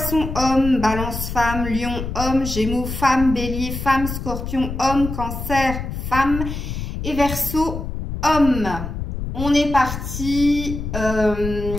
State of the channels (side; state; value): left; noise; rumble, 6 dB below the sound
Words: homme, Balance femme, Lion homme, Gémeaux femme, Bélier femme, Scorpion homme, Cancer femme et Verseau homme. On est parti.